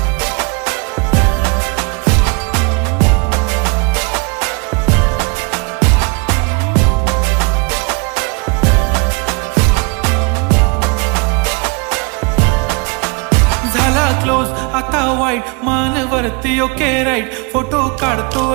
झाला क्लोज आता वाईट, मानवरती ओके राईट. फोटो काढतो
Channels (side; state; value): left; quieter; 30.9 dB